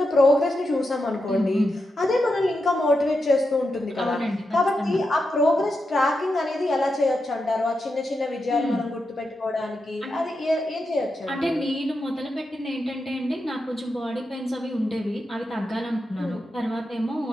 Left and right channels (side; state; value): both; normal; correlation 0.87